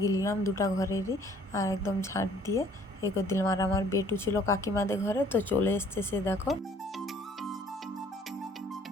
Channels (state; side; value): normal; both; correlation 0.57